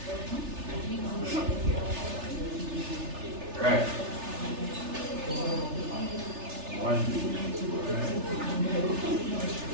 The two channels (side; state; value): left; late; 3.3 ms